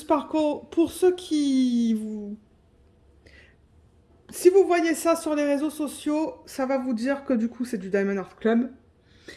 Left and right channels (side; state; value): both; identical; correlation 1.00